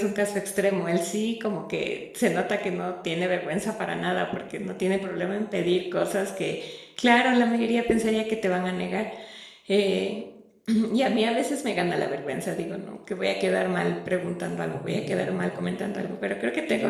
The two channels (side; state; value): both; identical; correlation 1.00